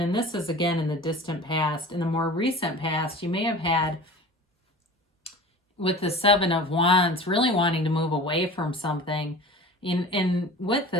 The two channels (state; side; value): normal; both; correlation 0.39